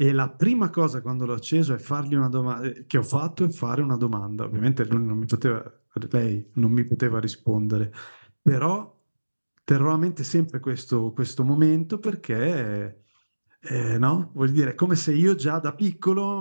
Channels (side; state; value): both; inverted; correlation -1.00